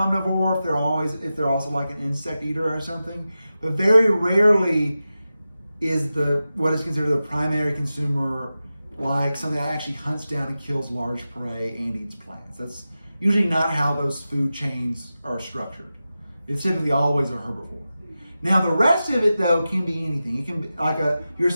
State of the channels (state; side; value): inverted; both; correlation -0.93